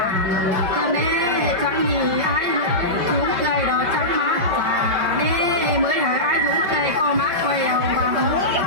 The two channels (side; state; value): left; late; 5.6 ms